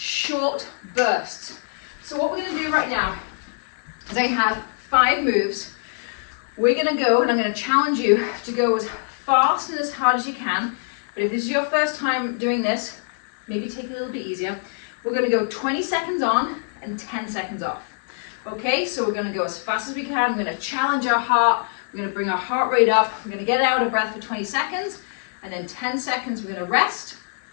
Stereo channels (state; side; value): silent; right; 63 dB below the other